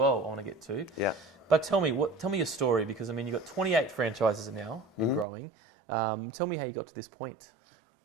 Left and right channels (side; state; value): left; drops out; at 5.2 s